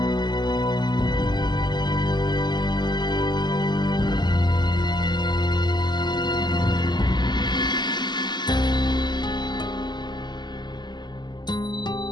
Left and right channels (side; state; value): right; late; 0.21 ms